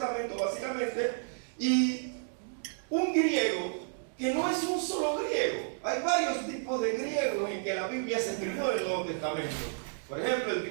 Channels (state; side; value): silent; left; digital silence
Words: básicamente, y un griego que no es un solo griego. Hay varios tipos de griegos en que la Biblia se escribió en el Nuevo Testamento. Por ejemplo, el